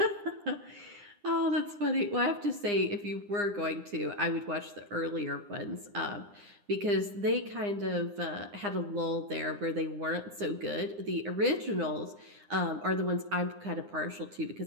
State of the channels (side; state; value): left; late; 9.8 ms